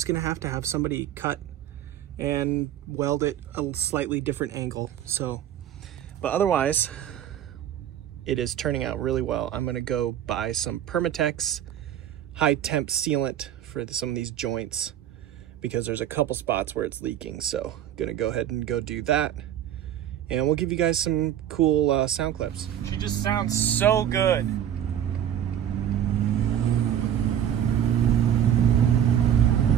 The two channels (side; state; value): left; quieter; 10.6 dB